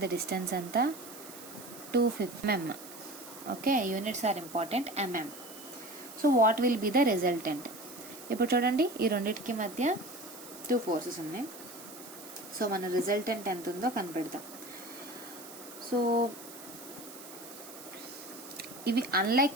డిస్టెన్స్ ఎంత 250 mm. Okay, units are important, mm. So what will be the resultant? ఇప్పుడు చూడండి, ఈ రెండింటికి మధ్య 2 ఫోర్సెస్ ఉన్నాయి. సో మన రిజల్టెంట్ ఎంత ఉందో కనిపెడతాం. సో ఇవి అన్లైక్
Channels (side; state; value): right; noise; hiss, 15 dB below the sound